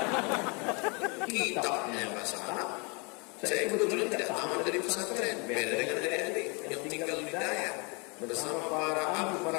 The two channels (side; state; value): right; quieter; 31.6 dB